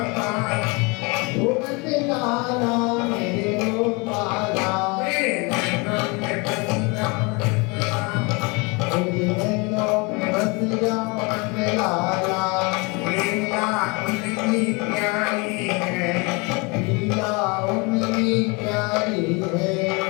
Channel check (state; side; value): quieter; right; 28.9 dB